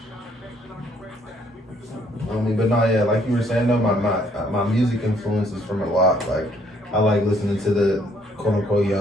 I mean, but no, yeah, like you were saying though, my music influences from a lot. Like, I like listening to the quote unquote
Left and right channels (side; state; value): both; normal; correlation 0.65